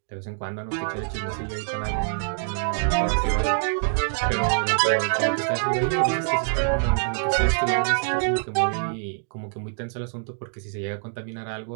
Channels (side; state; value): left; silent; digital silence